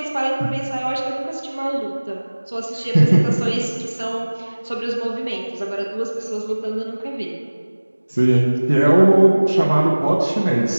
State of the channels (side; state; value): both; inverted; correlation -1.00